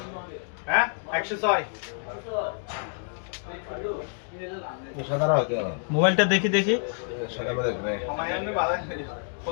হ্যাঁ 106 মোবাইলটা দেখি দেখি কমায়ানো বালা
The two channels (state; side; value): silent; right; 60 dB below the other